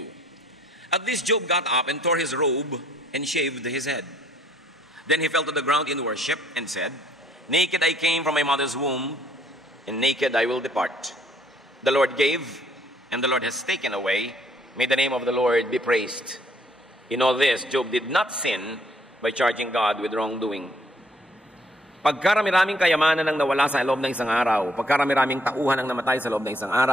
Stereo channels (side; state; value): both; normal; correlation 0.65